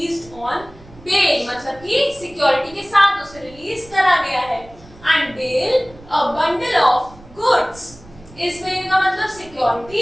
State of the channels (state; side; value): noise; right; rumble, 22 dB below the sound